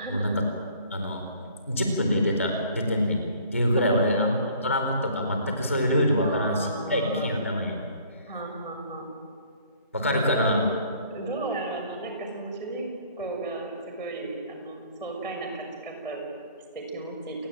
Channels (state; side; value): inverted; both; correlation -0.56